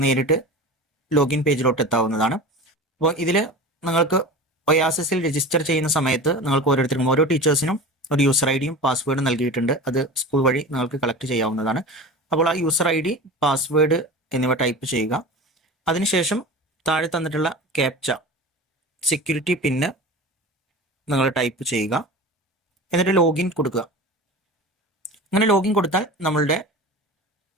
നേരിട്ട് ലോഗിൻ പേജിലോട്ട് എത്താവുന്നതാണ്. അപ്പോൾ ഇതിൽ നിങ്ങൾക്ക് ഒയാസിസിൽ രജിസ്റ്റർ ചെയ്യുന്ന സമയത്ത് നിങ്ങൾക്ക് ഓരോരുത്തർക്കും ഓരോ ടീച്ചേഴ്സിനും ഒരു യൂസർ ഐഡിയും പാസ്വേഡും നൽകിയിട്ടുണ്ട്. അത് സ്കൂൾ വഴി നിങ്ങൾക്ക് കളക്ട് ചെയ്യാവുന്നതാണ്. അപ്പോൾ ആ യൂസർ ID, പാസ്വേഡ് എന്നിവ ടൈപ്പ് ചെയ്യുക. അതിനുശേഷം താഴെ തന്നിട്ടുള്ള ക്യാപ്ച സെക്യൂരിറ്റി പിന്ന് നിങ്ങൾ ടൈപ്പ് ചെയ്യുക. എന്നിട്ട് ലോഗിൻ കൊടുക്കുക. അങ്ങനെ ലോഗിൻ കൊടുത്താൽ നമ്മളുടെ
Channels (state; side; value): normal; both; correlation 0.33